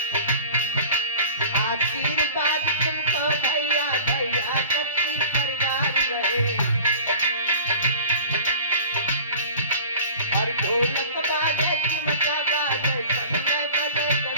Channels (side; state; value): both; inverted; correlation -0.41